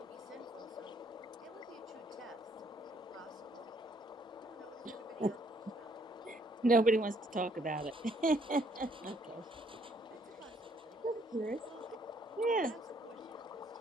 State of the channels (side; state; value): both; normal; correlation 0.66